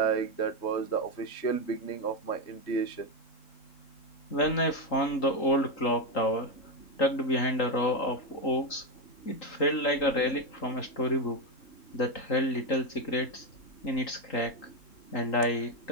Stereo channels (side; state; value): right; late; 3.8 ms